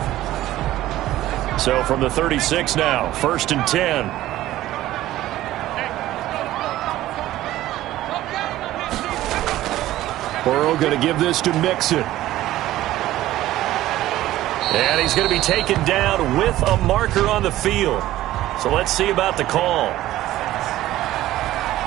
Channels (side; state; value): left; quieter; 14.9 dB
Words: So from the 36 now, 1st and 10. Burrow going to give this to Mixon. And he's going to be taken down with a marker on the field. So let's see about the call.